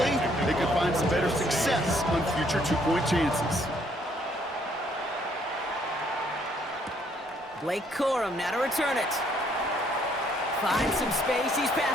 they can find some better success on future 2-point chances. Blake Corum now to return it. Finds some space. He's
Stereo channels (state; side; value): normal; both; correlation 0.67